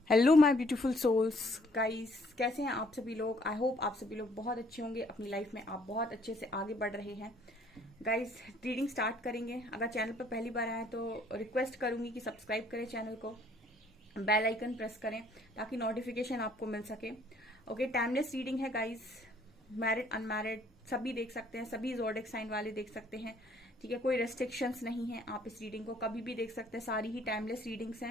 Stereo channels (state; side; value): normal; both; correlation 0.62